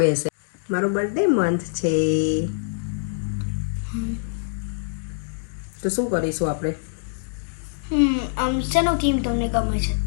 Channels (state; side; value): silent; right; digital silence